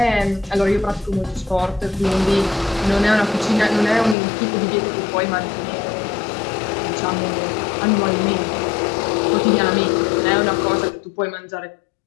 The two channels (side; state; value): right; drops out; at 4.2 s